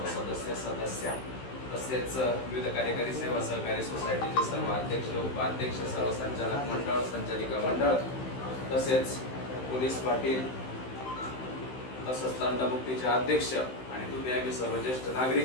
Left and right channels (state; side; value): late; right; 15 ms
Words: सदस्य तसेच विविध कार्यकारी सेवा सहकारी सोसायटीचे सर्व अध्यक्ष, उपाध्यक्ष, सर्व संचालक मंडळ, संचालिका मंडळ, तसेच पोलीस पाटील, तसंच तंटमुक्तीचे अध्यक्ष आणि तुम्ही आम्ही सर्व ज्येष्ठ